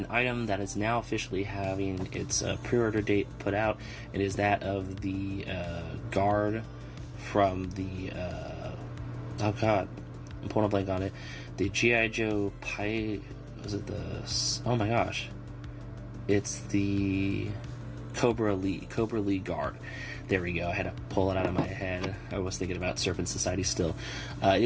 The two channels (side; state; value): both; identical; correlation 1.00